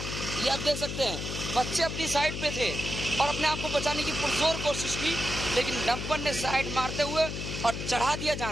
आप देख सकते हैं, बच्चे अपनी साइड पे थे और अपने आप को बचाने की पुरजोर कोशिश की, लेकिन डंपर ने साइड मारते हुए और चढ़ा दिया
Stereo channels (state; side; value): noise; left; hum, 5 dB below the sound